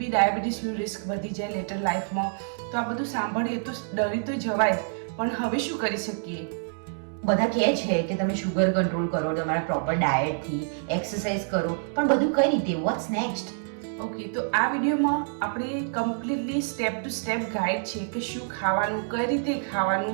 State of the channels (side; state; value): left; silent; digital silence